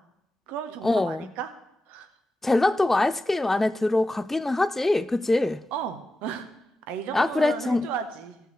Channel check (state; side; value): normal; both; correlation 0.92